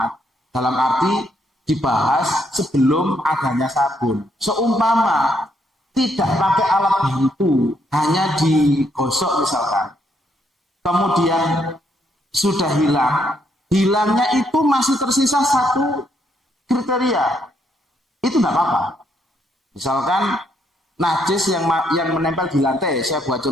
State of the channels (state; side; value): normal; both; correlation 0.74